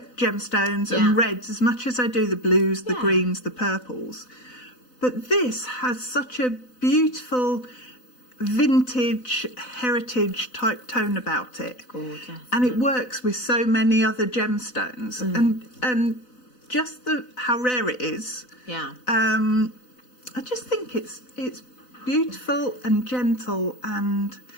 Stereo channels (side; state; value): right; late; 4.0 ms